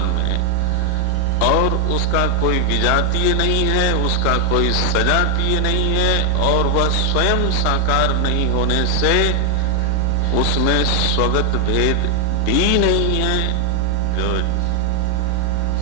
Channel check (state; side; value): different; both; correlation 0.00